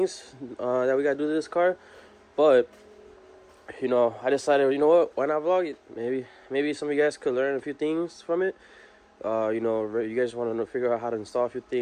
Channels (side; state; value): both; identical; correlation 1.00